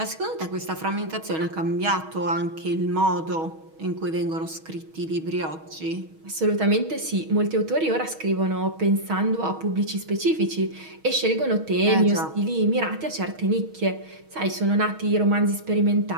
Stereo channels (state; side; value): late; left; 6.3 ms